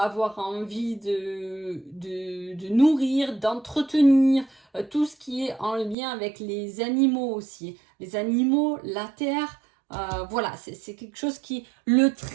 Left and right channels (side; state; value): left; drops out; at 6.0 s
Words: envie de nourrir, d'entretenir, tout ce qui est en lien avec les animaux aussi. Les animaux, la terre, voilà, c'est quelque chose qui... Le